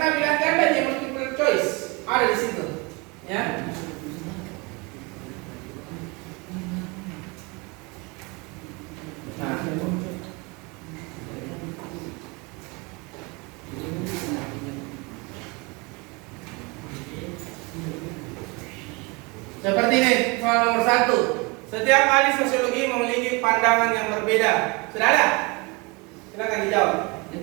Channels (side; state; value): left; quieter; 27.8 dB